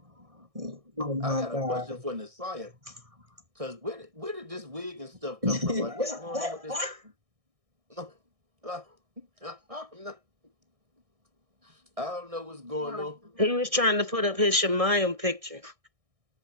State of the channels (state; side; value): late; left; 1.6 ms